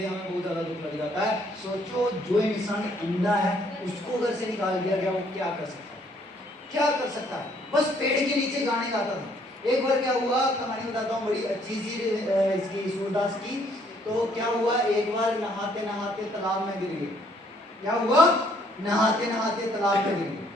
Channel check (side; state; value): both; normal; correlation 0.65